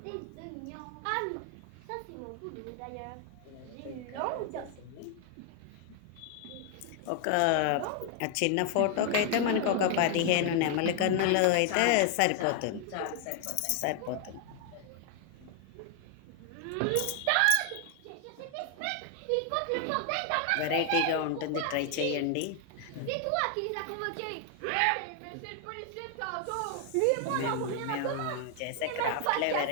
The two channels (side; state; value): both; different; correlation 0.00